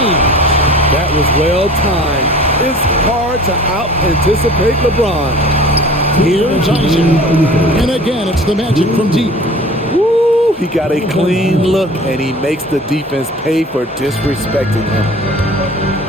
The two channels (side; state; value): both; normal; correlation 0.44